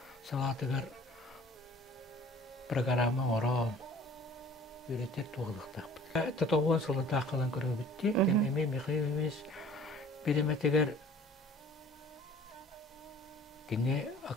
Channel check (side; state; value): both; normal; correlation 0.49